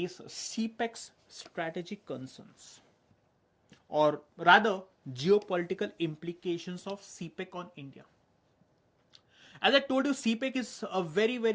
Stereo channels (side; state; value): both; identical; correlation 1.00